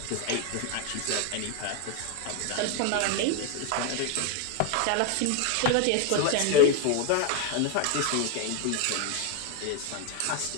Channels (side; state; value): both; different; correlation 0.01